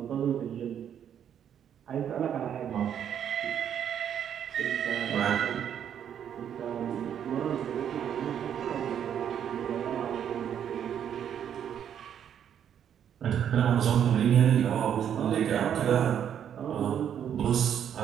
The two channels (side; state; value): left; quieter; 9.1 dB